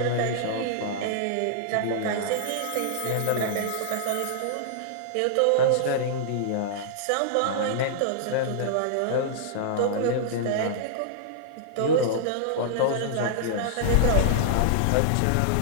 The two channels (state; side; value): different; both; correlation -0.01